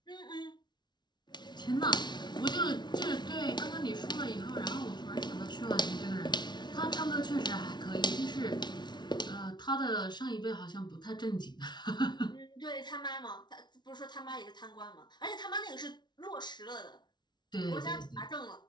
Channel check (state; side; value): late; right; 0.21 ms